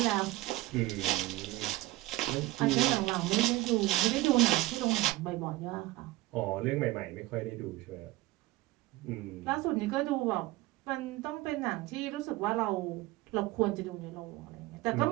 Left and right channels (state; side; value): quieter; left; 18.9 dB